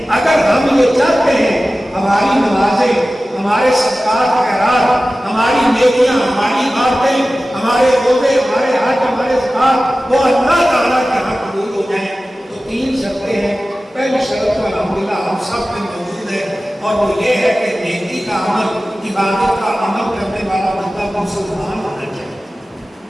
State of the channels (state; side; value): normal; both; correlation 0.96